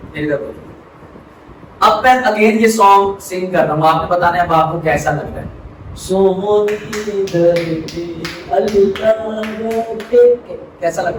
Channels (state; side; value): identical; both; correlation 1.00